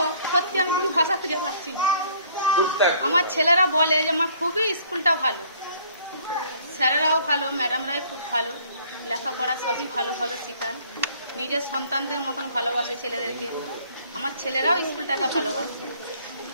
সত্যি আমি কিছু ভাষা খুঁজে পাচ্ছি না। আমার ছেলেরা বলে যে মা খুবই স্কুলটা ভালো, স্যারেরাও ভালো, ম্যাডামরাই খুব ভালো, লেখাপড়া সবই ভালোভাবে শেখান, নিজের সন্তানদের মতন ভালোবাসে ছেলেদেরকে। আমার ছেলেরাও স্কুলটাকে ভালোবাসে।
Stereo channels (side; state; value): both; inverted; correlation -0.59